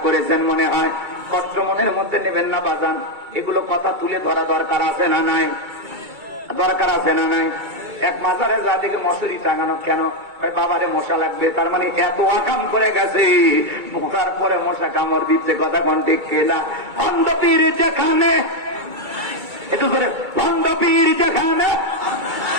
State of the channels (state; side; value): late; left; 2.3 ms